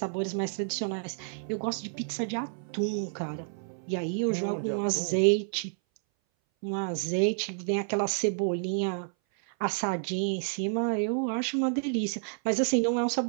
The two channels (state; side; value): silent; left; 58 dB below the other